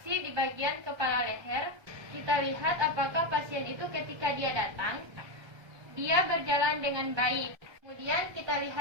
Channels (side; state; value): left; late; 1.2 ms